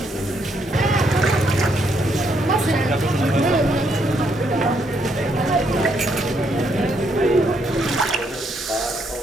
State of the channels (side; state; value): both; normal; correlation 0.74